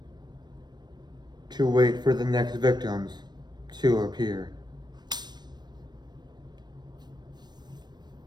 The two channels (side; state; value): left; late; 0.21 ms